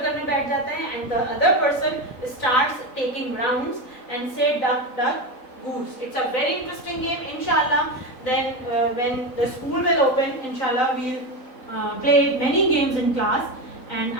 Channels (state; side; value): late; right; 3.9 ms